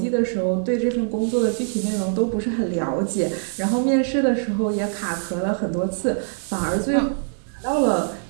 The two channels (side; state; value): left; silent; digital silence